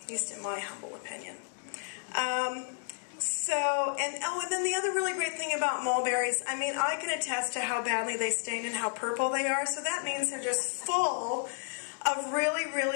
at least in my humble opinion. And then the other really great thing about mulberries, I mean, I can attest to how badly they stain and how purple they are, so that means they're just full of really,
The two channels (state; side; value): silent; right; digital silence